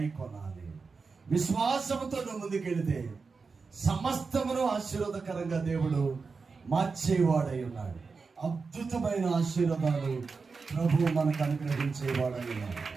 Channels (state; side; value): quieter; left; 4.7 dB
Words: విశ్వాసముతో నువ్వు ముందుకెళితే సమస్తమును ఆశీర్వాదకరంగా దేవుడు మార్చేవాడై ఉన్నాడు. అద్భుతమైన ఆశీర్వాదాలు ప్రభు మనకు అనుగ్రహించేవాడై ఉన్నాడు.